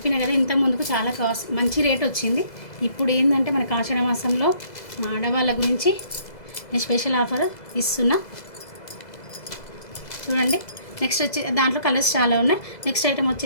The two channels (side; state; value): right; late; 2.0 ms